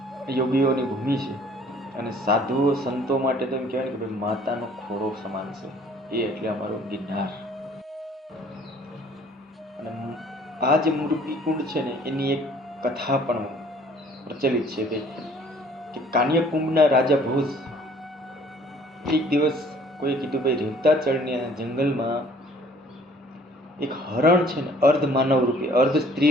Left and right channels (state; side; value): normal; both; correlation 0.55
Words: યોગીઓની ભૂમિ છે. અને સાધુઓ સંતો માટે તો એમ કહેવાય કે ભાઈ માતાનો ખોરો સમાન છે એ, એટલે અમારો ગિરનાર. અને આ જે મૃગીકુંડ છે ને એની એક કથા પણ પ્રચલિત છે કે કાન્યકુંભના રાજા ભોજ એક દિવસ કોઈ કીધું ભાઈ રેવતાચળની જંગલમાં એક હરણ છે ને અર્ધ માનવ રૂપે, અર્ધ